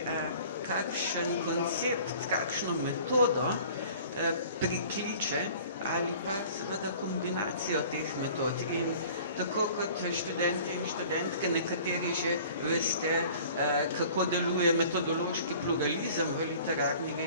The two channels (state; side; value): inverted; both; correlation -0.47